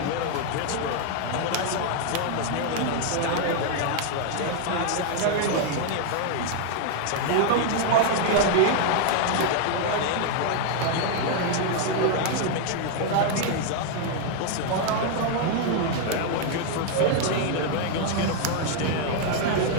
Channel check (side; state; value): both; different; correlation 0.00